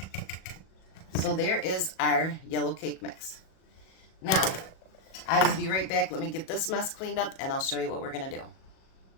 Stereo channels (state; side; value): late; right; 37 ms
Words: So there is our yellow cake mix. Now, I will be right back. Let me get this mess cleaned up, and I'll show you what we're going to do.